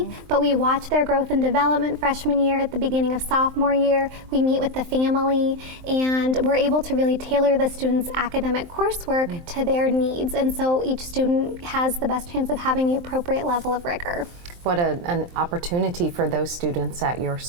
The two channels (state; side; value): late; left; 23 ms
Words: but we watch their growth and development freshman year, at the beginning of sophomore year. We meet with the family, and we're able to really tailor the student's academic coursework to their needs. And so each student has the best chance of having the appropriate level of rigor. What an opportunity for those students at your